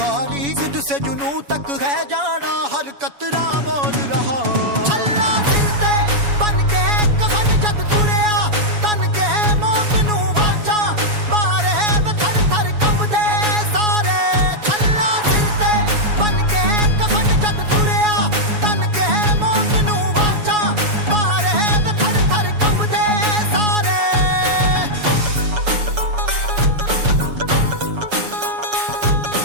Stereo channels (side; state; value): left; late; 7.1 ms